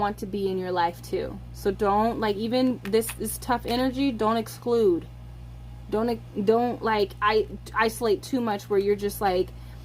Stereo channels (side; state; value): both; identical; correlation 1.00